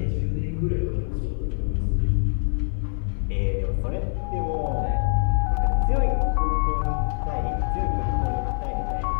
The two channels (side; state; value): right; silent; 58 dB below the other